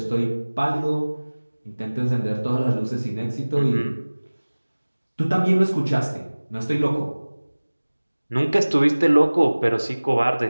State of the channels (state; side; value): inverted; both; correlation -1.00